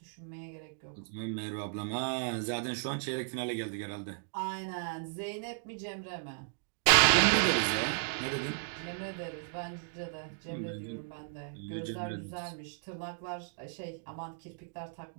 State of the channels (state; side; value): silent; left; digital silence